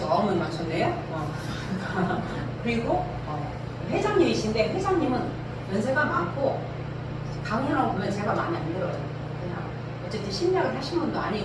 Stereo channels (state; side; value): identical; both; correlation 1.00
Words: 9명 맞췄네요. 그리고 회장님이신데 회장님은 연세가 많고 강연하고 보면 제가 마음에 안 들어요. 그냥 어쨌든 심리학을 하신 분도